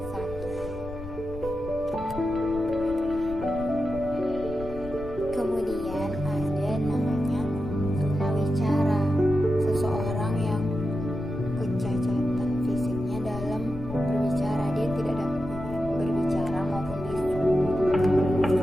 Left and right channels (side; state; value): left; noise; rumble, 13 dB below the sound